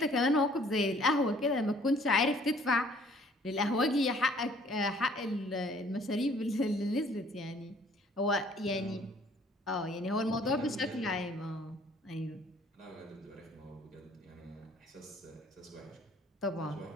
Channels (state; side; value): normal; both; correlation 0.58